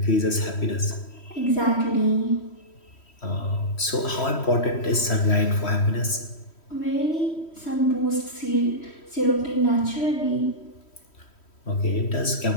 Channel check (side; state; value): right; late; 3.1 ms